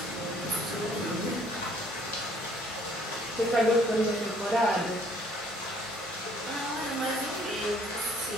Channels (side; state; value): both; normal; correlation 0.61